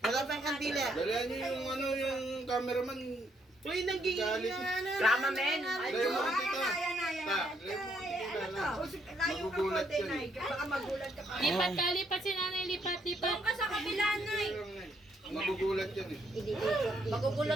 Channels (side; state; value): both; normal; correlation 0.72